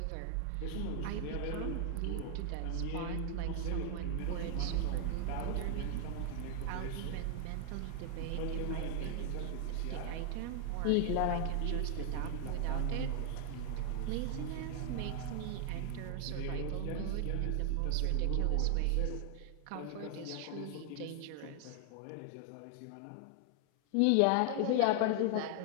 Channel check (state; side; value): different; both; correlation 0.00